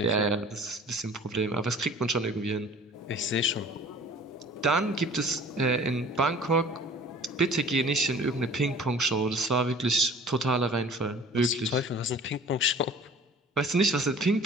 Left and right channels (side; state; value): both; normal; correlation 0.47